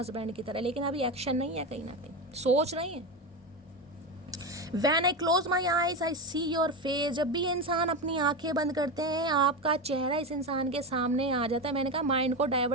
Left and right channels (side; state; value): both; normal; correlation 0.17